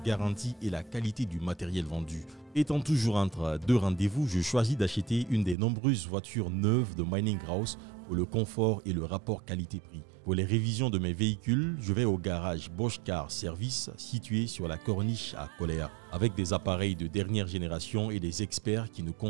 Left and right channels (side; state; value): left; drops out; at 5.6 s